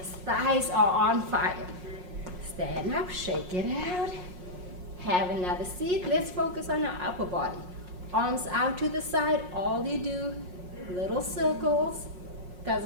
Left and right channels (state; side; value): late; left; 5.6 ms